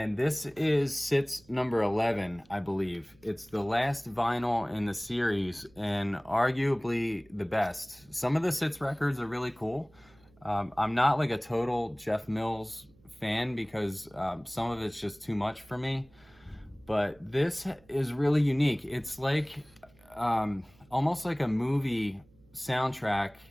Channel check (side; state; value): right; noise; hum, 29 dB below the sound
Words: this is Sits number 11, I believe. It's the last vinyl in the series and arguably the best. Some of the Sits records are really cool. I'm not like a total Jeff Mills fan because some of it's just too much for me. But this is really unique. It's like almost like a movie soundtrack